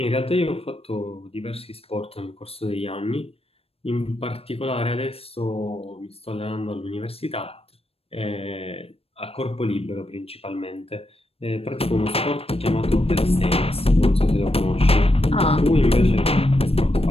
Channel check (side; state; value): right; late; 0.28 ms